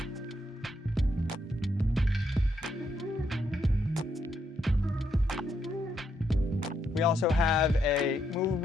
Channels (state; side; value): normal; both; correlation 0.77